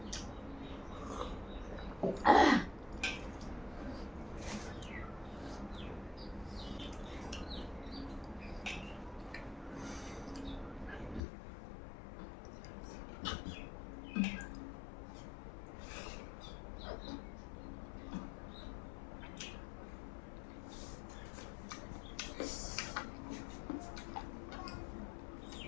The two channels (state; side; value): drops out; right; at 11.2 s